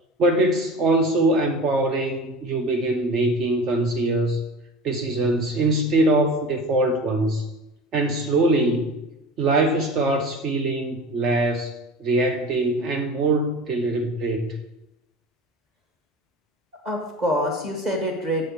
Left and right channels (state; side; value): normal; both; correlation 0.35